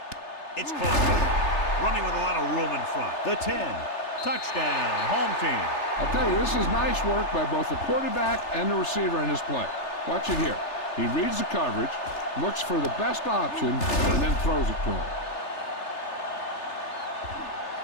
It's caught. Running with a lot of room in front. The 10. Touchdown. Home team. I'll tell you, this is nice work by both the quarterback and the receiver in his play. Watch it here. He reads the coverage, looks for the best option, and then throws it to him.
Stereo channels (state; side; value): late; right; 3.3 ms